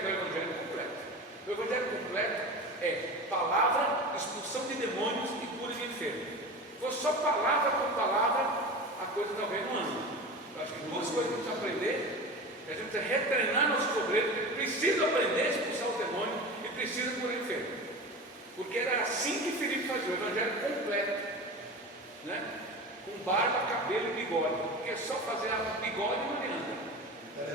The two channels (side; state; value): both; normal; correlation 0.30